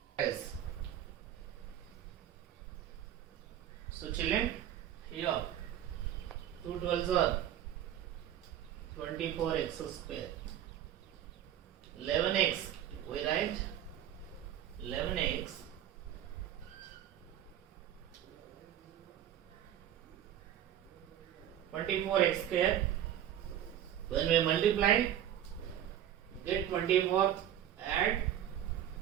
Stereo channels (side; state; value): left; quieter; 11.0 dB